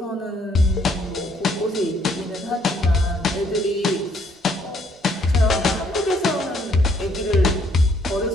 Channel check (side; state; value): both; normal; correlation 0.67